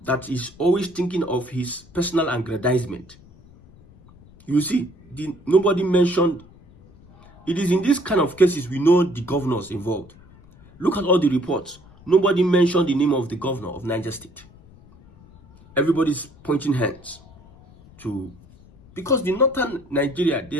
that is always thinking of his personal aggrandizement. You see, nobody mentioned. It is in this kind of cases we know the governors involved. Look at all the reports. Nobody mentioned the name of the governor of Niger State. Everybody's pointing hands to, because the northern Nigeria, they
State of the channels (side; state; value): left; noise; rumble, 24 dB below the sound